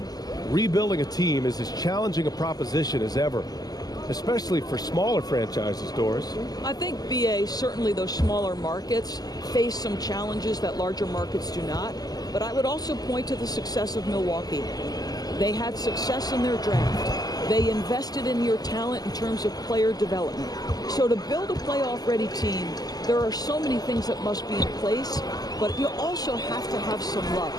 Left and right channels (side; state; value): right; late; 0.19 ms